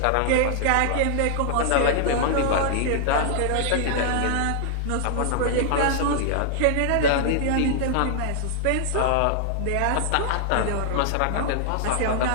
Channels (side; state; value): both; different; correlation -0.01